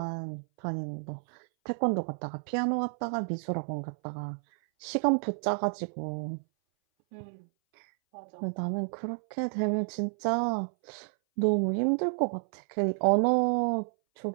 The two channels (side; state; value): left; silent; 58 dB below the other